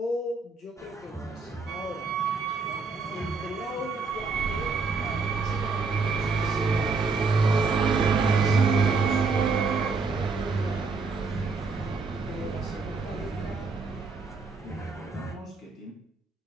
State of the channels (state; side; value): quieter; left; 4.4 dB